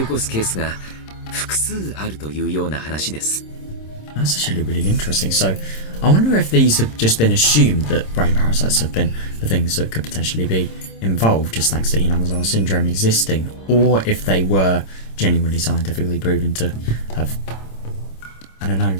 すケースが複数あるというような話です。 That's actually really interesting. So, I wonder if these have just been assumed that brain parasites have been the things that could potentially be involved just thanks to Hinamizawa syndrome existing, or if they were genuinely scientifically proven to have, I don't know,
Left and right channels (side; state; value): right; late; 26 ms